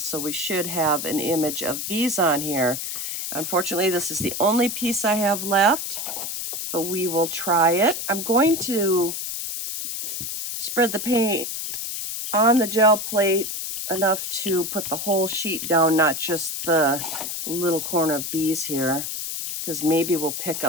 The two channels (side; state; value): left; noise; hiss, 4 dB below the sound